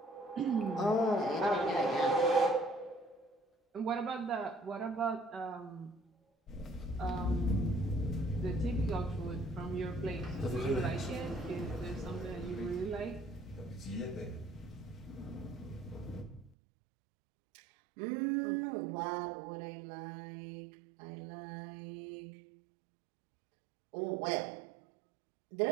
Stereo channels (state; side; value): drops out; left; at 16.6 s